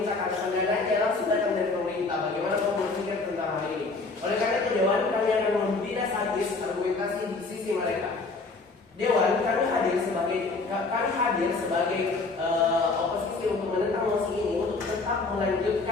karena pendanaan langsung datang dari pemerintah. Bagaimana kamu berpikir tentang hal ini? Oleh karena itu Dewan, kami kami akan tidak sadis argumentasi di sisi mereka. Dewan, kami hadir sebagai oposisi untuk menentang mosi ini untuk tetap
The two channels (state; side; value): quieter; right; 3.8 dB